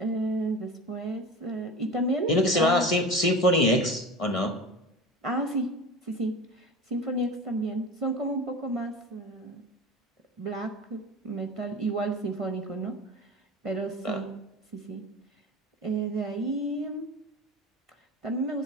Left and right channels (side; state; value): both; normal; correlation 0.32